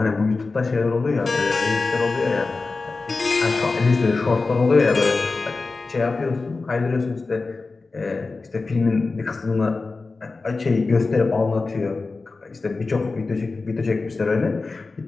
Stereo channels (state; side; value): quieter; right; 3.8 dB